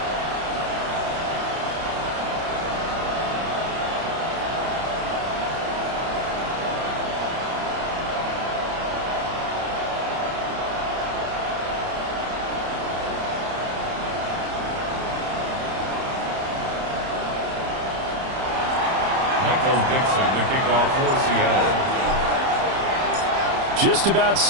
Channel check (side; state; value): left; late; 30 ms